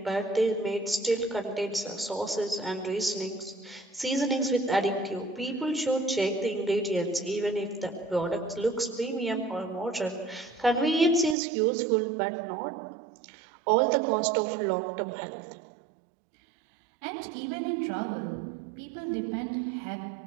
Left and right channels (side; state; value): left; drops out; at 11.4 s